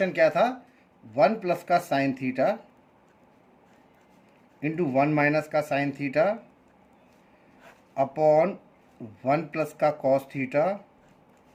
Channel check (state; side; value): identical; both; correlation 1.00